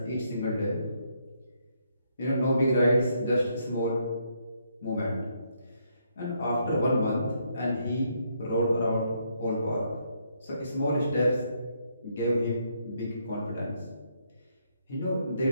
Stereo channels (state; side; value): inverted; both; correlation -0.74